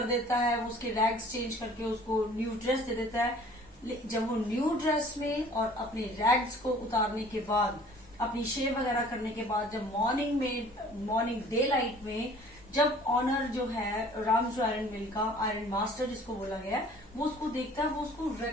देता है, वो उसके रैग्स चेंज करके उसको न्यू ड्रेस दे देता है। जब वो न्यू ड्रेस में और अपने रैग्स को उतारने के बाद, अपनी शेव वगैरह करने के बाद, जब मॉर्निंग डे लाइट में जब ऑनर जो है रामजो आयरन मिल का आयरन मास्टर जिसको बोला गया है वो उसको देखता है, वो उसको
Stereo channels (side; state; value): both; normal; correlation 0.51